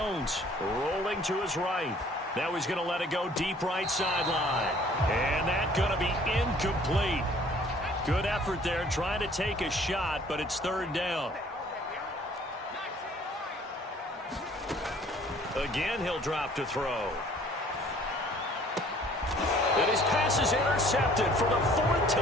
rolling to his right. Now he's going to let it go deep right sideline. And that's going to be incomplete. Good effort there trying to take a shot, but it's 3rd down. Again, he'll drop to throw. And his pass is intercepted for the 4th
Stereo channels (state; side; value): normal; both; correlation 0.55